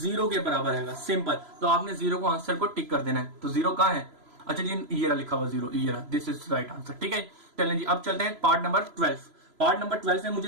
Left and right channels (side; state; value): left; late; 3.0 ms